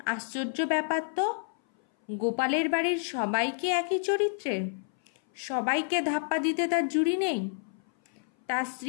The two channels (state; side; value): silent; right; 57 dB below the other